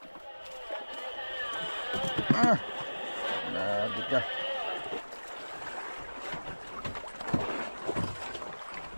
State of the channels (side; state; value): both; inverted; correlation -1.00